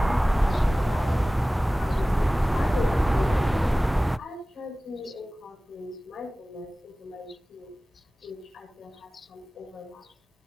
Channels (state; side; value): normal; both; correlation 0.97